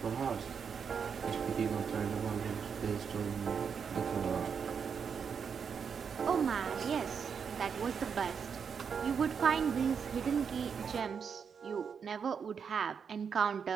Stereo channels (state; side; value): quieter; left; 6.6 dB